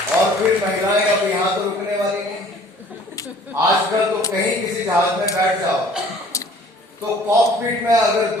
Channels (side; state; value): both; normal; correlation 0.52